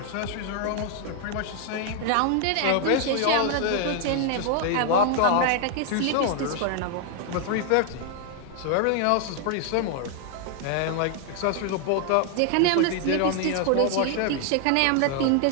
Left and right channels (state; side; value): different; both; correlation 0.00